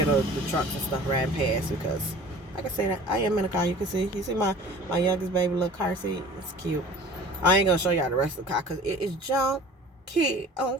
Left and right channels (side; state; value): both; normal; correlation 0.44